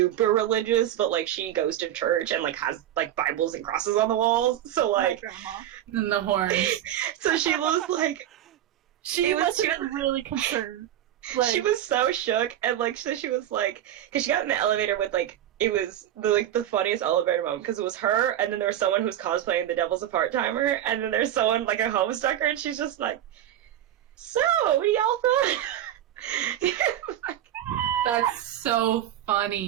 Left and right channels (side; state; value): left; quieter; 11.8 dB